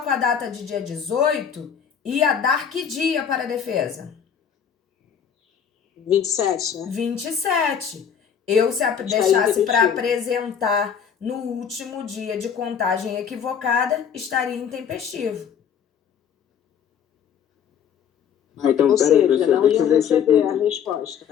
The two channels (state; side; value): quieter; right; 7.8 dB